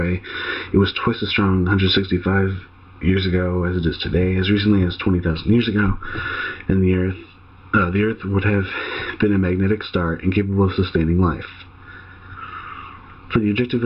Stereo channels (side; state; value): both; identical; correlation 1.00